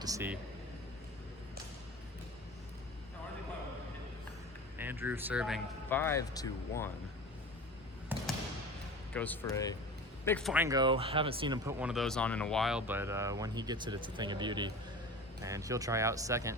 to see. Andrew serving 5-1. Goes for a big fine go. Haven't seen him put one of those on in a while, but when he gets it, it's a thing of beauty. And he'll try out second,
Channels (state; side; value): normal; both; correlation 0.34